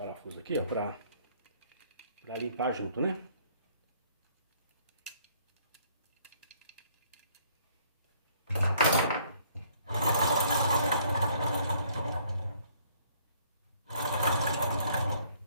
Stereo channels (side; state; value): both; inverted; correlation -0.62